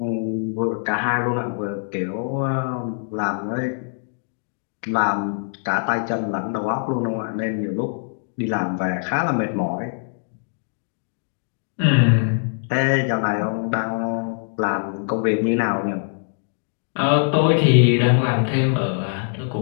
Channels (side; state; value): right; silent; digital silence